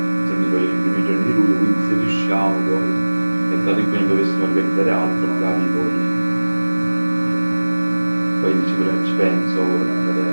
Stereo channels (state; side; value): inverted; both; correlation -1.00